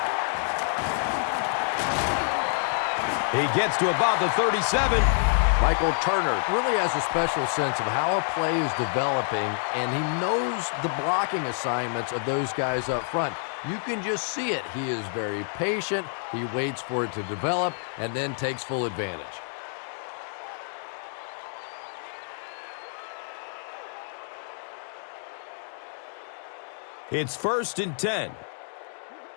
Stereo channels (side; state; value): right; silent; 60 dB below the other